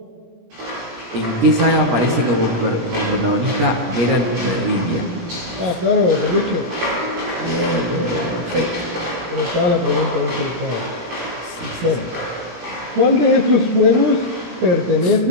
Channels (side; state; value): left; late; 17 ms